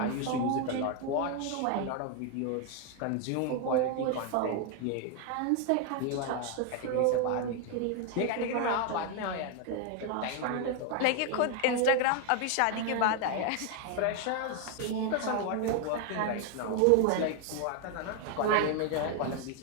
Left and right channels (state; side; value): different; both; correlation 0.01